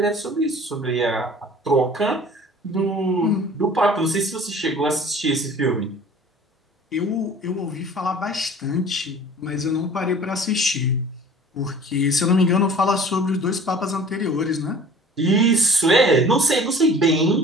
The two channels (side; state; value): both; normal; correlation 0.46